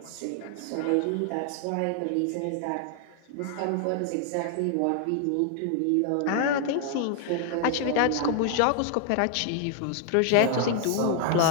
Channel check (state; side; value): different; both; correlation 0.00